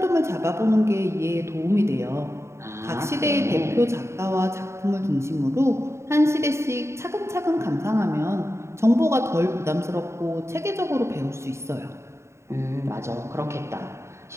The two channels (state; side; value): late; left; 0.13 ms